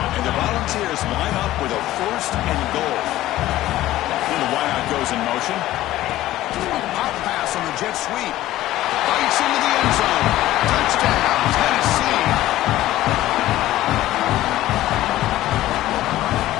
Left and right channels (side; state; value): right; quieter; 15.1 dB